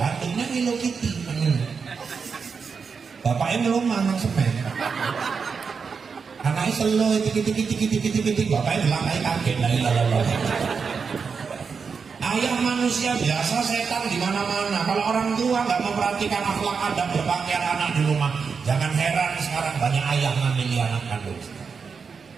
Hello Kitty. Bapaknya belum manang semen, anaknya selo titik, bapaknya bilang kayak kaget dari lalu. Ayah manusia biasa, setan di mana-mana. Kalau orang tua nggak memperhatikan akhlak adab berpakaian anak di rumah, jangan heran sekarang banyak ayah ngambil anak kandung.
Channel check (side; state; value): left; quieter; 5.6 dB